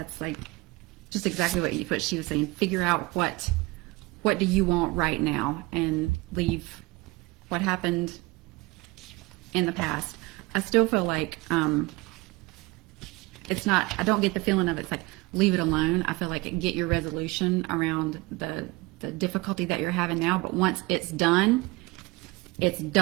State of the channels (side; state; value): left; quieter; 22.7 dB